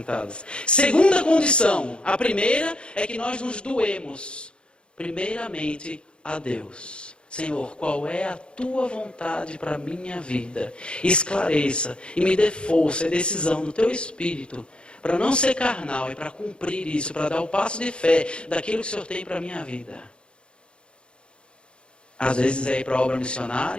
Segunda condição, a primeira é que nós nos doemos primeiramente a Deus. Senhor, qual é a tua vontade para a minha vida? Esclareça e me dê força e decisão no teu espírito para não ser carnal e para cumprir isso, para dar o passo de fé daquilo que o Senhor tem para a minha vida. Às vezes é ir para a obra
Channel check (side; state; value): right; late; 0.055 ms